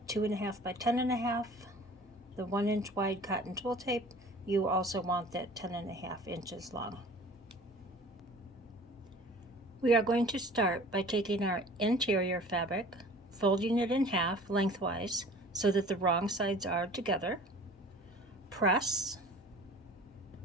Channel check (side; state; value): both; normal; correlation 0.45